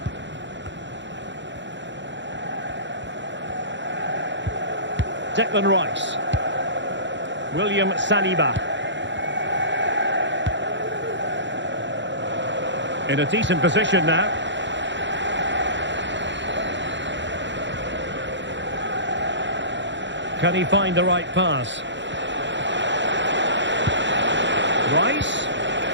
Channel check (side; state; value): left; late; 0.53 ms